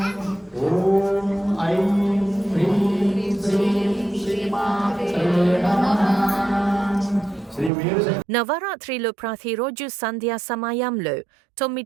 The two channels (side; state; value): left; drops out; at 7.7 s